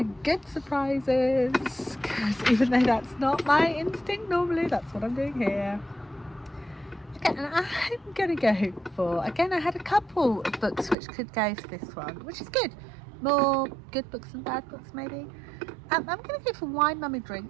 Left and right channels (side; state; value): left; drops out; at 11.0 s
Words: good surprises. Because even though that's not my instinct normally, that's what I'm doing here. Okay, and I'm going to go for, again, I had a couple of books which could go for this one, which is good. More good books than bad books, maybe. I'm going to go for Why Mummy